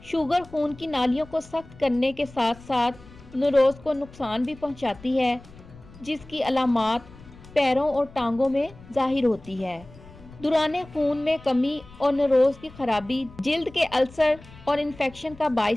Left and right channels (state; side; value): noise; left; rumble, 21 dB below the sound